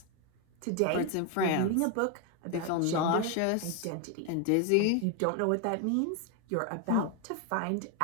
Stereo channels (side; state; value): both; different; correlation 0.01